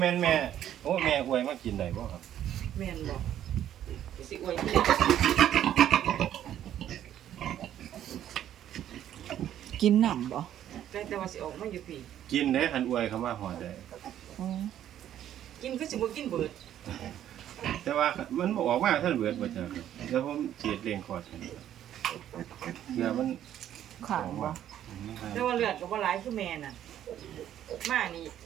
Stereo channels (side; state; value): left; quieter; 11.1 dB